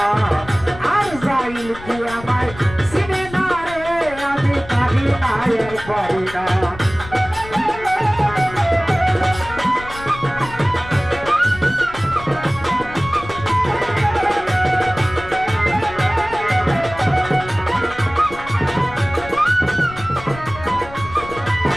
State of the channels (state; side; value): noise; left; rumble, 15 dB below the sound